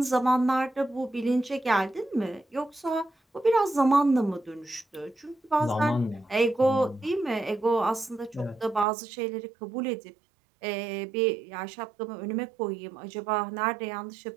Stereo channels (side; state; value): left; drops out; at 8.8 s